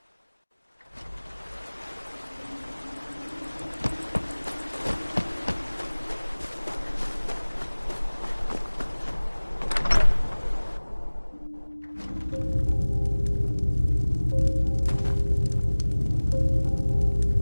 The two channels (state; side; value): inverted; both; correlation -1.00